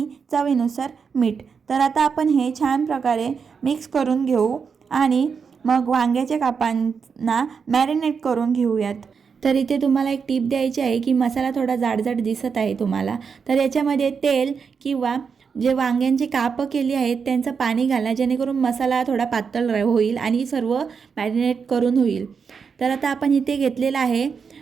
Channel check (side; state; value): left; quieter; 6.0 dB